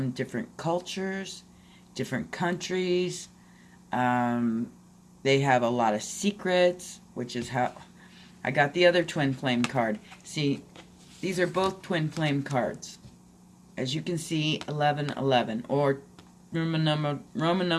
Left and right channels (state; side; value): identical; both; correlation 1.00